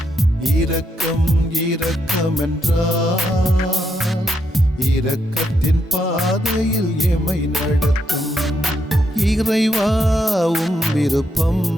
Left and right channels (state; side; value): normal; both; correlation 0.80